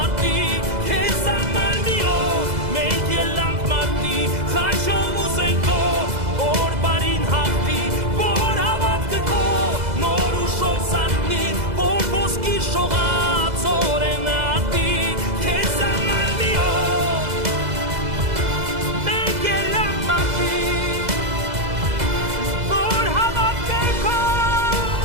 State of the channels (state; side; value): late; left; 2.0 ms